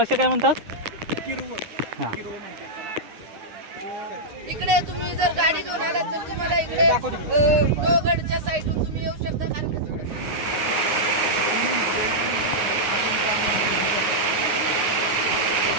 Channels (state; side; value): late; left; 9.6 ms